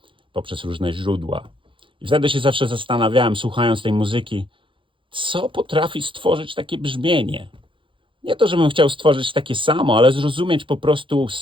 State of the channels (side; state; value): left; late; 0.25 ms